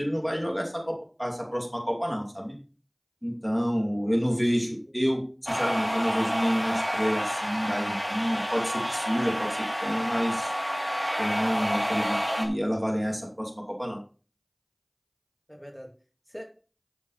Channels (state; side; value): identical; both; correlation 1.00